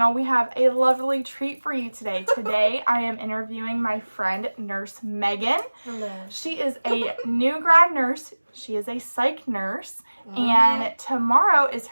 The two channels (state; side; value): inverted; both; correlation -1.00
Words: We have a lovely treat for you today. Today I am interviewing my friend Nurse Meaghan. Hello. She is a new grad nurse. She is a psych nurse, and tomorrow is